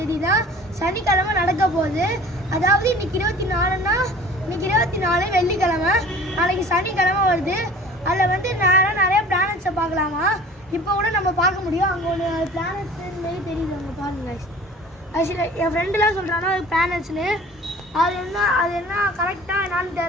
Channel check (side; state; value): both; normal; correlation 0.45